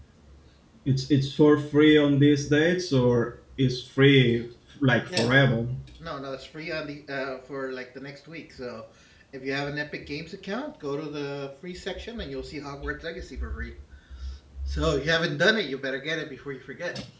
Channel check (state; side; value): identical; both; correlation 1.00